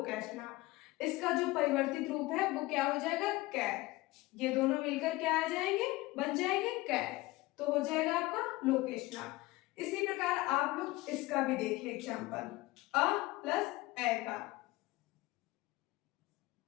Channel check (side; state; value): right; quieter; 20.2 dB